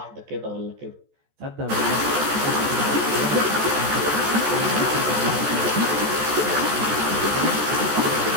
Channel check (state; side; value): late; left; 14 ms